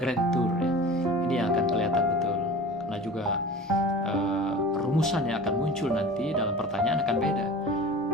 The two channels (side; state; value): both; normal; correlation 0.38